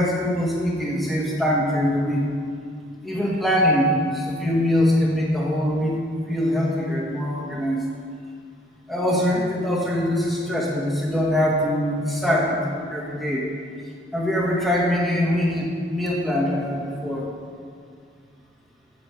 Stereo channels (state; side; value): normal; both; correlation 0.62